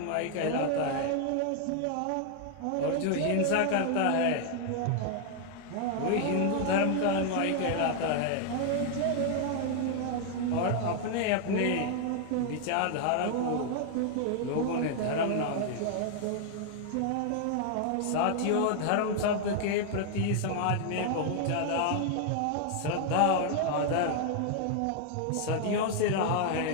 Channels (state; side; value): different; both; correlation 0.00